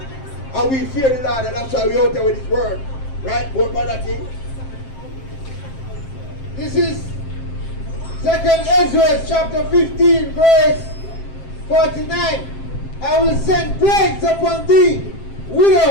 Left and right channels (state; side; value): late; right; 7.6 ms